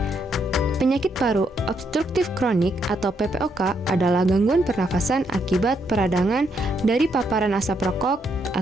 Penyakit paru obstruktif kronik atau PPOK adalah gangguan pernafasan akibat peradangan dari paparan asap rokok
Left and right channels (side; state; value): both; normal; correlation 0.76